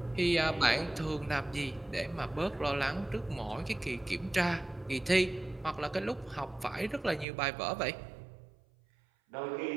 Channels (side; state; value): left; drops out; at 7.2 s